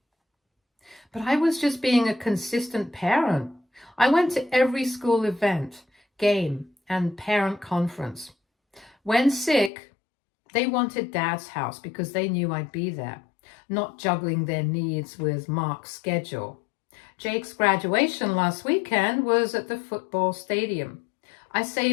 But I was just being a consistent parent. I went to every school event, game, and parent conference. When sick, they wanted Dad's house because they knew I'd be there, not juggling their needs with Mark's schedule. Jake's graduation last weekend was at the football stadium. I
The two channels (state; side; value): drops out; right; at 9.7 s